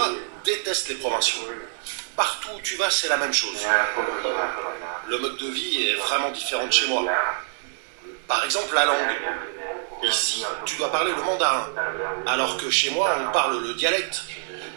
détestent les provinciaux. Partout où tu vas, c'est la même chose. Le mode de vie est vraiment différent de chez moi. Par exemple, la langue. Ici, tu dois parler le mandarin, alors que chez moi, on parle le dialecte.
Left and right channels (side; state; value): left; silent; 62 dB below the other